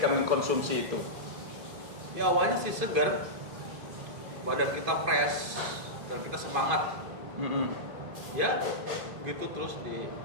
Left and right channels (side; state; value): left; late; 2.5 ms